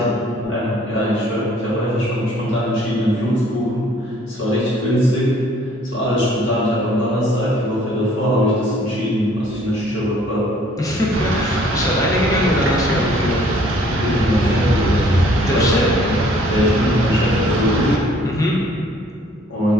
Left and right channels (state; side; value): normal; both; correlation 0.58